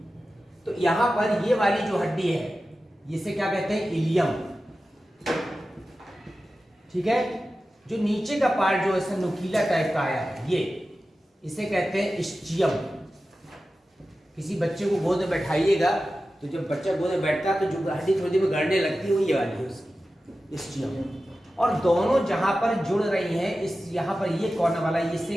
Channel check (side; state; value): both; normal; correlation 0.94